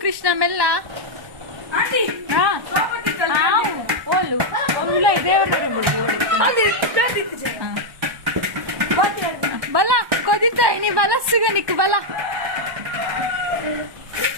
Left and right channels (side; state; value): left; late; 1.1 ms